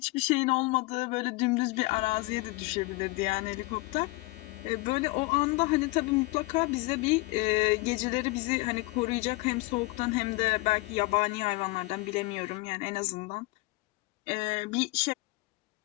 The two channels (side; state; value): right; quieter; 22.9 dB